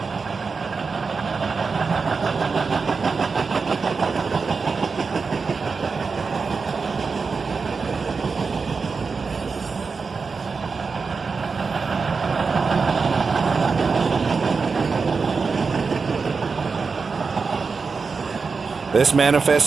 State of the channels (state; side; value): quieter; left; 4.8 dB